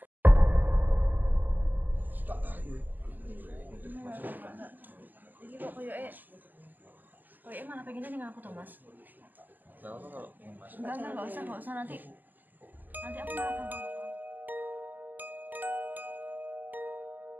Iki kok koyoke malah pengennya dengan aku tuh, Mas. Nggak apa kalau Mas. Enggak usah nanti aku malah gampang.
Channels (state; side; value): late; left; 0.085 ms